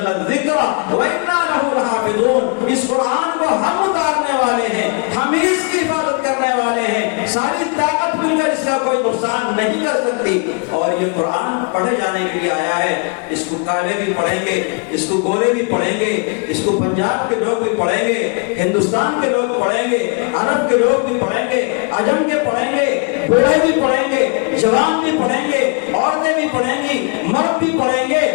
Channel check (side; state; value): right; quieter; 33.7 dB